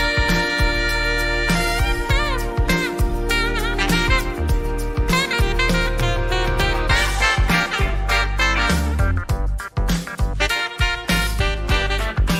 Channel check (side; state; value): both; identical; correlation 1.00